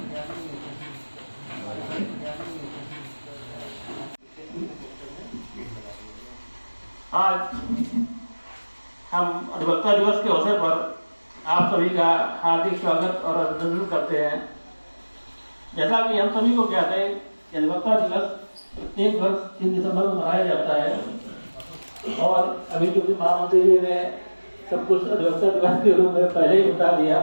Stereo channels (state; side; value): inverted; both; correlation -1.00